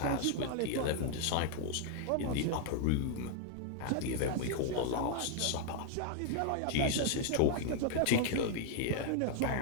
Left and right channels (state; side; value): different; both; correlation 0.00